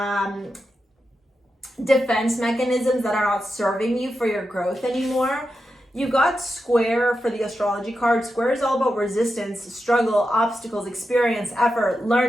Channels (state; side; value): normal; both; correlation 0.89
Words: defense mechanisms that are not serving you for your growth anymore. You got Square for the astrology card. Square is all about resistance, struggle, obstacles, experience, effort,